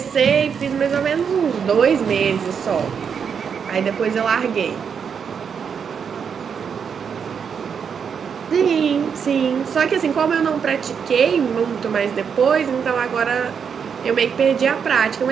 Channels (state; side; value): quieter; left; 6.9 dB